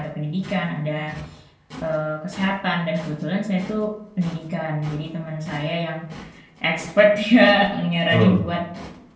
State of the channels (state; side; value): identical; both; correlation 1.00